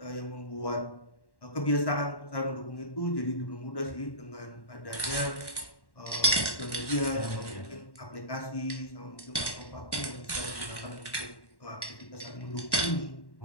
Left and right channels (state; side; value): late; right; 1.1 ms